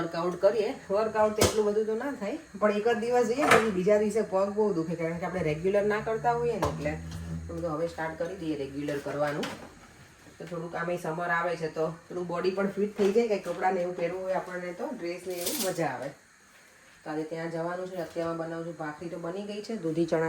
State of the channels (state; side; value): identical; both; correlation 1.00